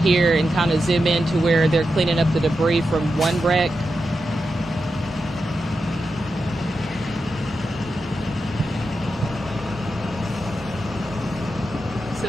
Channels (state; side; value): normal; both; correlation 0.88